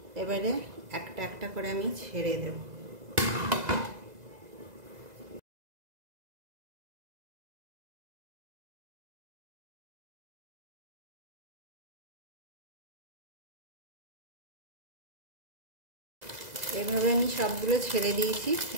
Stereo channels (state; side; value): late; left; 2.0 ms